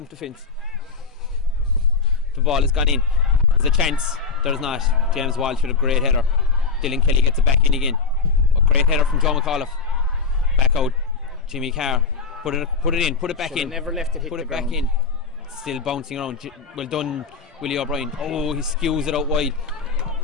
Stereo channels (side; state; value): right; quieter; 4.9 dB